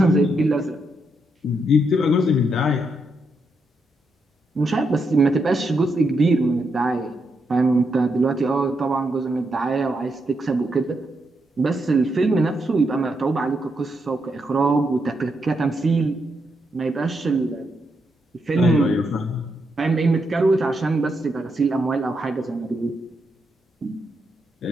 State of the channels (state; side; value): normal; both; correlation 0.81